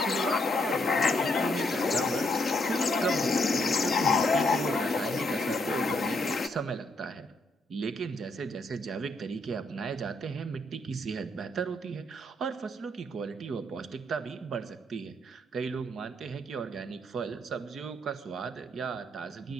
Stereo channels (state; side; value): normal; both; correlation 0.74